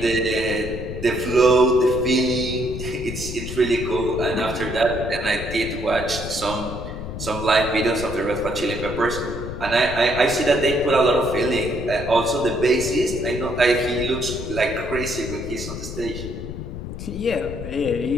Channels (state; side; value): noise; left; rumble, 8 dB below the sound